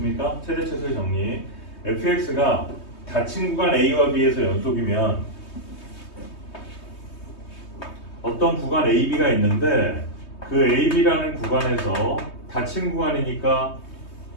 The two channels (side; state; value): right; late; 3.2 ms